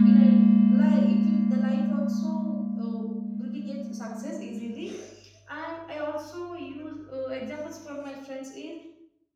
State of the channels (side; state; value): both; identical; correlation 1.00